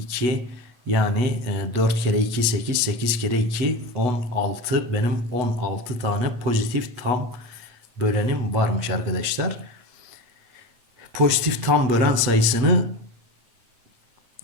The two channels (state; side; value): late; left; 8.1 ms